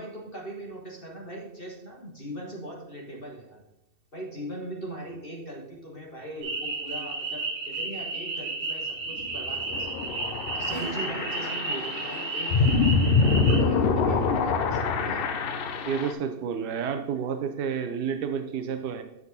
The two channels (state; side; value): late; right; 2.7 ms